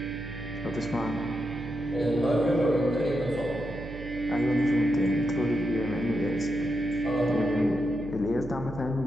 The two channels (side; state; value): right; noise; hum, 13 dB below the sound